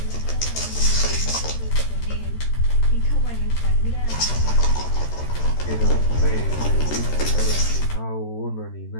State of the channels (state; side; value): late; right; 13 ms